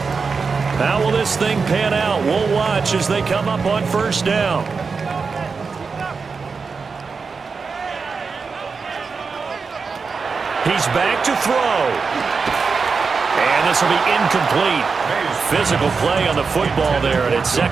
How will this thing pan out? We'll watch as they come up on first down. He's back to throw. And this will be incomplete. Physical play on the football there, and it's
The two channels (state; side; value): quieter; left; 4.9 dB